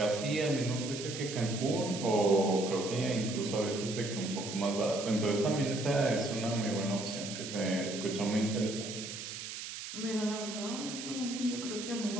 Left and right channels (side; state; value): right; noise; hiss, 8 dB below the sound